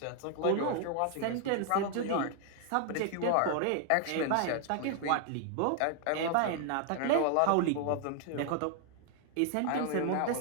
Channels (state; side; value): different; both; correlation 0.00